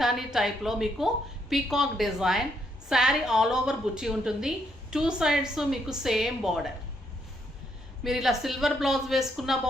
టైప్లో మీకు peacock design sari all over బుట్టి ఉంటుంది. 2 సైడ్స్ మీకు సేమ్ బార్డర్. మీరు ఇలా సిల్వర్ బ్లౌజ్ వేసుకున్నా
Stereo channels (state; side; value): normal; both; correlation 0.74